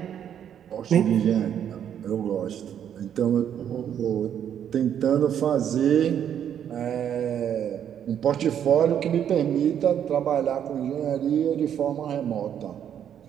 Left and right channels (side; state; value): left; quieter; 9.3 dB